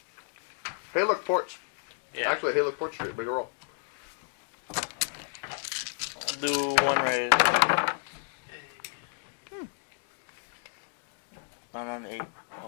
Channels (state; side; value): silent; right; 57 dB below the other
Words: Hey, look, porch. yeah. Actually, hey, look, porch street. Make a roll. Do one raise. I'm